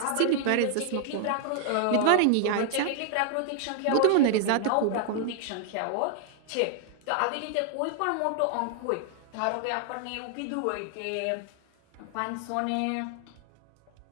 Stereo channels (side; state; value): both; different; correlation -0.01